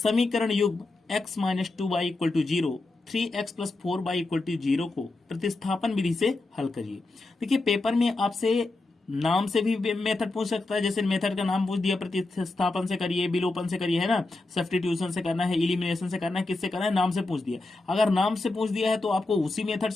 युग्म x minus 2y equal to 0 3x plus 4y equal to 0 को प्रतिस्थापन विधि से हल करिए। देखिए पेपर में आपसे नाम से भी मेथड पूछ सकता है, जैसे मेथड का नाम पूछ दिया, प्रतिस्थापन से करिए, विलोपन से करिए, है ना, सब्स्टिट्यूशन से करना है, इलिमिनेशन से करना है, किससे करना है, नाम से पूछ दिया। अगर नाम से पूछ दिया है तो आपको उसी मेथड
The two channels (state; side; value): quieter; right; 3.1 dB